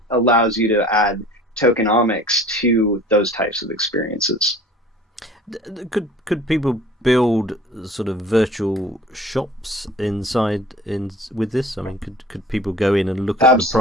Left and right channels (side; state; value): both; normal; correlation 0.46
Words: allows you to add tokenomics to those types of experiences. Could people build sort of virtual shops with this? I mean, could people go in and look at the